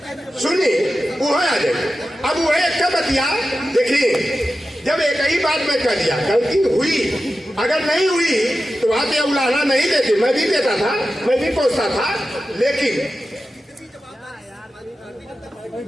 सुनिए, वो आ जाए। अब वो एक बतिया देखिए, जब एक ही बात में कर दिया, गलती हुई, अगर नहीं हुई तो वहां पे उलाहना नहीं देते, मैं भी देता था, मैं भी पूछता था, लेकिन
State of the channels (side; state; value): both; normal; correlation 0.92